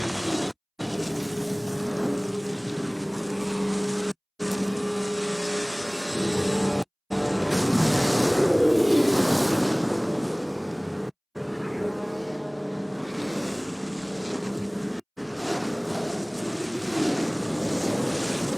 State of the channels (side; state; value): both; identical; correlation 1.00